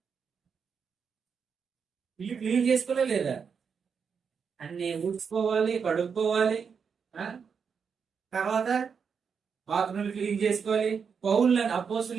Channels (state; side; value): quieter; left; 6.3 dB